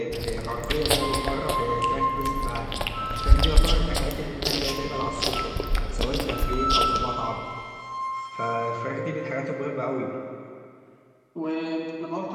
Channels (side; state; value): both; identical; correlation 1.00